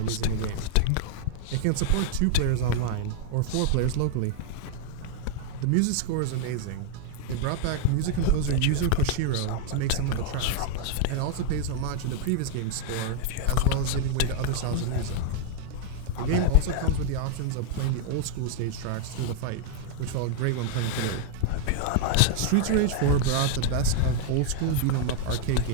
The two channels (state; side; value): different; both; correlation 0.00